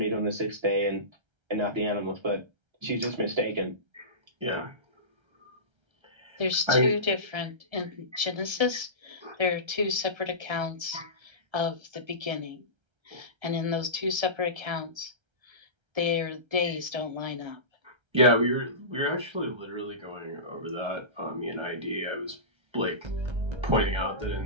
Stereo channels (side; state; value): left; late; 1.3 ms